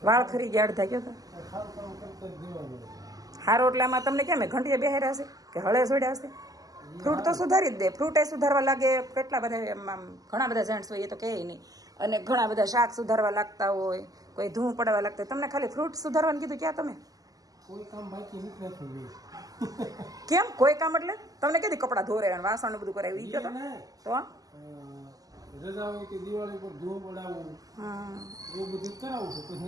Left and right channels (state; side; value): late; left; 0.17 ms